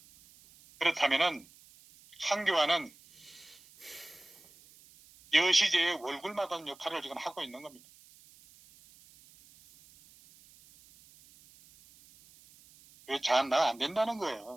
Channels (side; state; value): right; noise; hiss, 25 dB below the sound